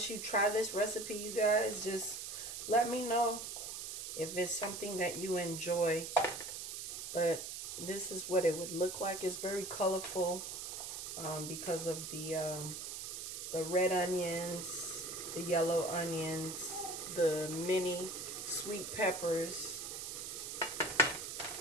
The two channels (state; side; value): noise; right; hiss, 6 dB below the sound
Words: you try this recipe, you guys, just let me know if it's something that you enjoy. But this is what it would look like. It's very colorful because of the red onions, the yellow onions, the mini sweet peppers,